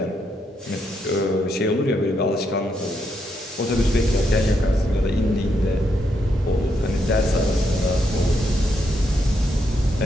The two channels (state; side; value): normal; both; correlation 0.79